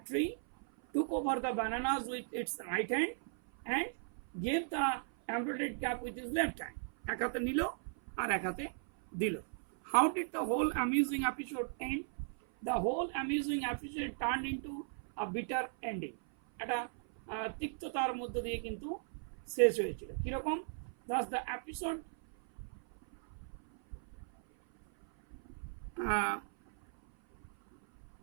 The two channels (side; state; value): left; silent; 53 dB below the other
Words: tree, took over the bananas with its right hand, and gave the embroidered cap with his left hand. এক হাতে নিল আর এক হাতে দিল. How did the whole amusing episode end? The whole amusing episode turned into a bitter ending. একটা তিক্ততার মধ্য দিয়ে কিন্তু শেষ হয়েছিল কিরকম thus the episode